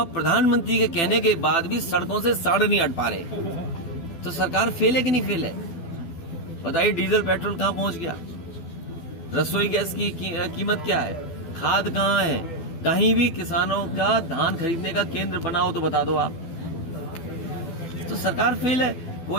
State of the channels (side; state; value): right; late; 12 ms